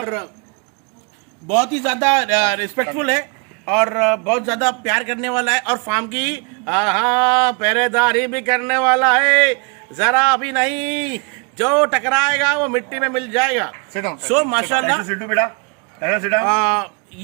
बहुत ही ज्यादा रिस्पेक्टफुल है और बहुत ज्यादा प्यार करने वाला है। और फार्म की पहरेदारी भी करने वाला है, जरा भी नहीं, जो टकराएगा वो मिट्टी में मिल जाएगा। सो माशाल्लाह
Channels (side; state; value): left; quieter; 33.2 dB